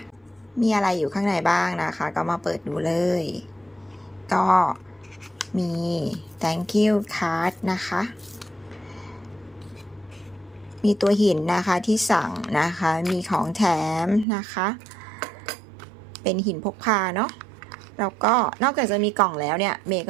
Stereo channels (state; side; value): drops out; left; at 14.2 s